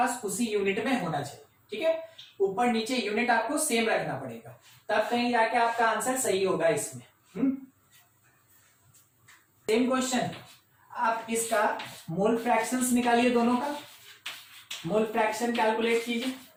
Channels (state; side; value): identical; both; correlation 1.00